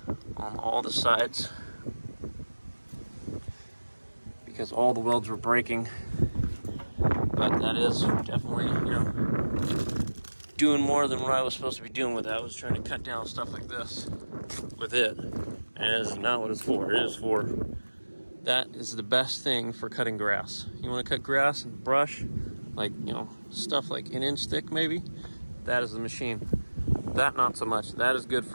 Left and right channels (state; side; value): inverted; both; correlation -1.00